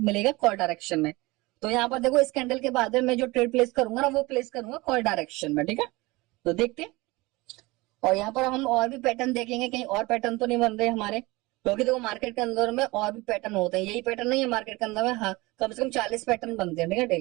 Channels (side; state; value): left; quieter; 22.4 dB